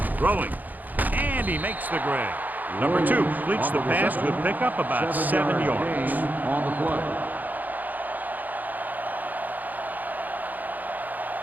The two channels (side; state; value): left; late; 0.082 ms